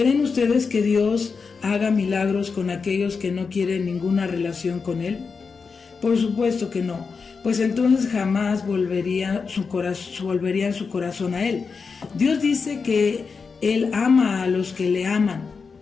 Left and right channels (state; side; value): quieter; right; 5.1 dB